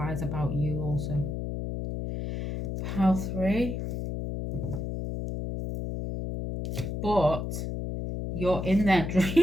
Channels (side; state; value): left; noise; hum, 4 dB below the sound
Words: about you also. Pile 3. But you're in their